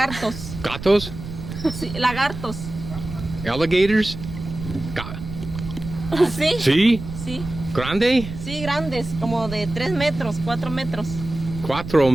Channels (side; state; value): right; noise; rumble, 10 dB below the sound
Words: Gatos. Sí, lagartos. Alligators. Sí. Sí. Sí. Grande. Sí, grandes, como de 3 metros, 4 metros. 4